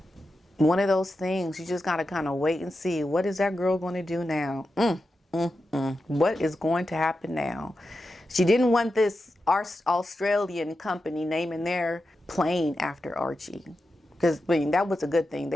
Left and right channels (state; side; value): normal; both; correlation 0.90